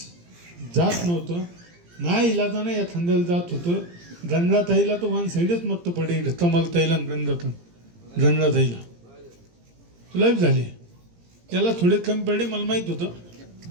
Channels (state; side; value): late; left; 17 ms